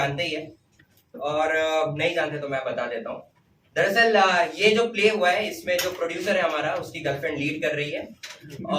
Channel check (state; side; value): identical; both; correlation 1.00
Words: ही हैं, और नहीं जानते तो मैं बता देता हूँ। दरअसल ये जो प्ले हुआ है इसमें जो प्रोड्यूसर है हमारा, उसकी गर्लफ्रेंड लीड कर रही है,